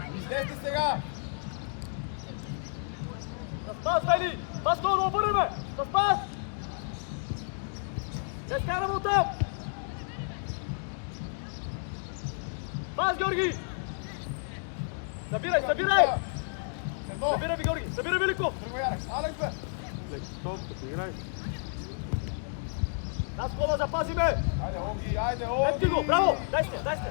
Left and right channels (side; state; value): right; silent; digital silence